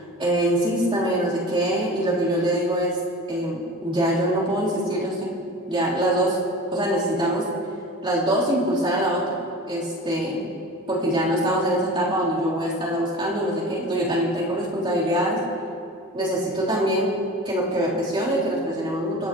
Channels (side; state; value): both; normal; correlation 0.36